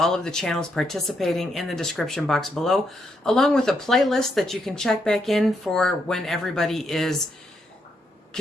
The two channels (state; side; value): normal; both; correlation 0.78